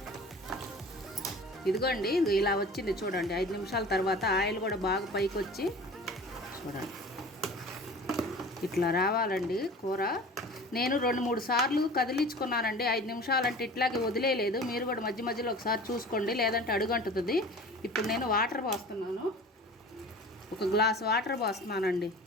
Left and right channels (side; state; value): both; normal; correlation 0.41